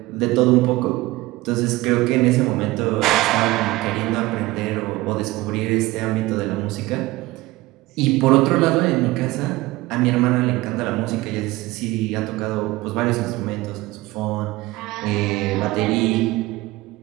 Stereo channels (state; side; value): quieter; left; 19.6 dB